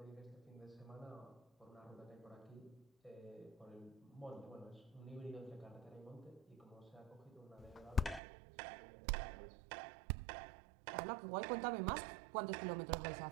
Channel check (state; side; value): drops out; left; at 8.2 s